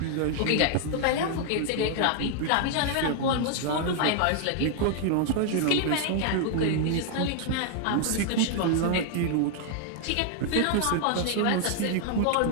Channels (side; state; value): both; different; correlation 0.00